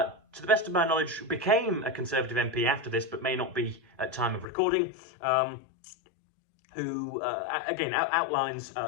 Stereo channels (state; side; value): drops out; right; at 4.5 s